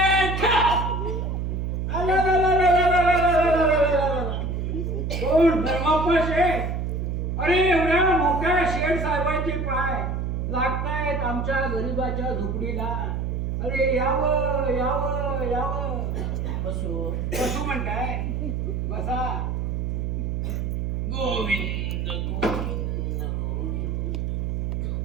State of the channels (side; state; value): right; noise; hum, 1 dB below the sound